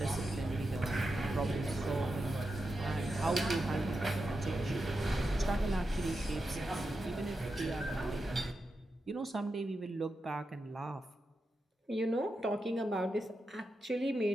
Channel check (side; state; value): both; normal; correlation 0.88